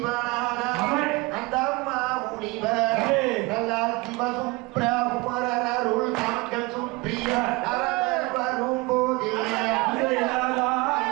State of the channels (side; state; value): left; quieter; 24.8 dB